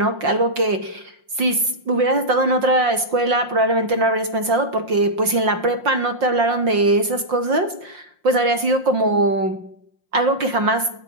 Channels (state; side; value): late; left; 5.6 ms